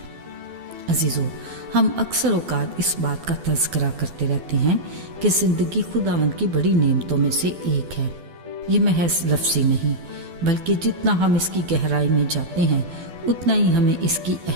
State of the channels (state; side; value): late; left; 12 ms